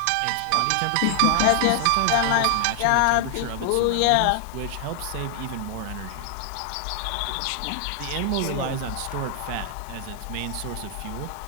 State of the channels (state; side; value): different; both; correlation 0.00